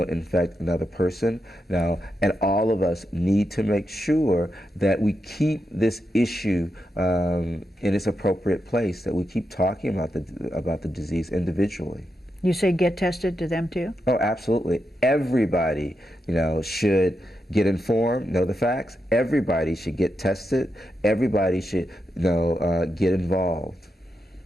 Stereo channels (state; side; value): normal; both; correlation 0.86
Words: infect another person. Now, and all of us need to make sure that we keep this issue in its appropriate place, that we keep talking about the disease individually. You say get tested to them too? Oh, absolutely. Everybody, you know, should get informed, know the facts. Everybody should get tested. Everybody should, you know, get involved.